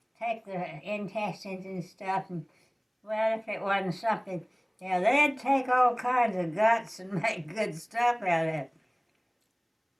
take the intestines and stuff and, well, if it wasn't something, they'd take all kinds of guts and make good stuff out of it.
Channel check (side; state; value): both; identical; correlation 1.00